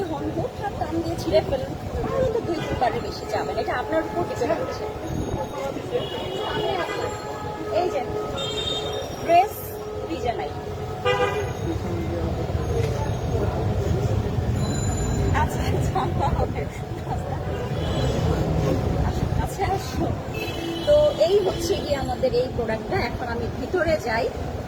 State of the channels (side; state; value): both; identical; correlation 1.00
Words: হন, হুটহাট দাম দিয়ে ছিঁড়ে ফেলেন, তাহলে তো 2-3 বেশি যাবেন। এটা আপনার উপর ডিপেন্ড করছে। এই যে ড্রেস ভিজে নাই। আচ্ছা আসো। তো এই হচ্ছে কি আমাদের এই প্রোডাক্টটা। এখন আমি ভিতরে যাই